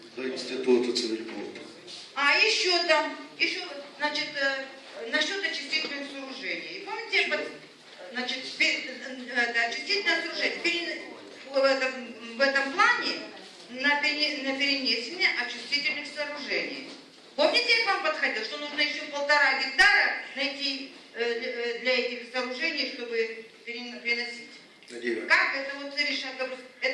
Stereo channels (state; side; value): identical; both; correlation 1.00